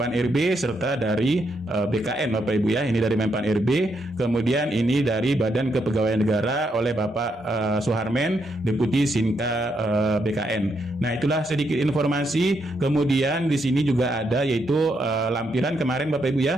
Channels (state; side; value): normal; both; correlation 0.79